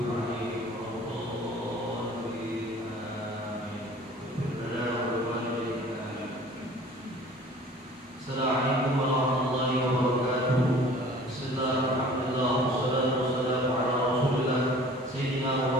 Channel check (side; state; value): both; normal; correlation 0.47